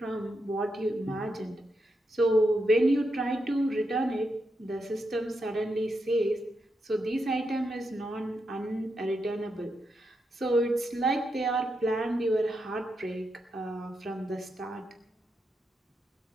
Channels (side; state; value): both; normal; correlation 0.84